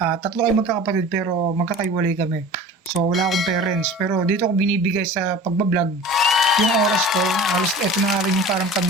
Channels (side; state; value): both; normal; correlation 0.39